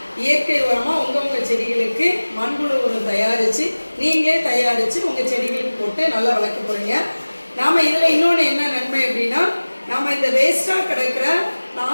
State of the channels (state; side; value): inverted; both; correlation -1.00